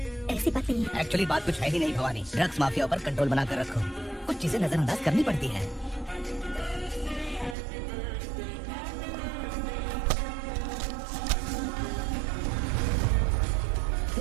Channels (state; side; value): drops out; left; at 7.6 s